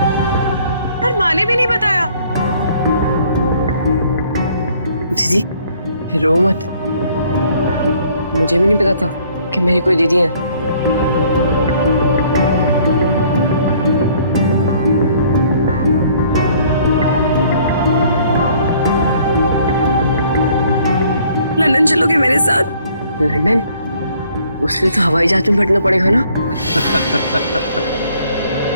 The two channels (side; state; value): both; inverted; correlation -0.60